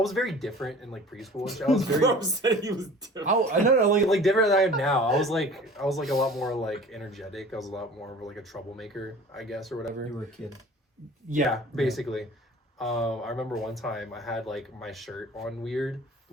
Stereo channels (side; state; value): both; normal; correlation 0.44